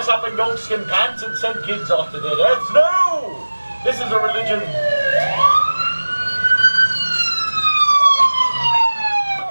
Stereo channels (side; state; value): both; inverted; correlation -1.00